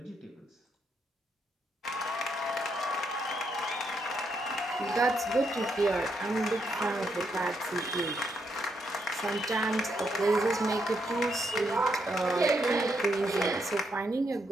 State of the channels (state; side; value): normal; both; correlation 0.78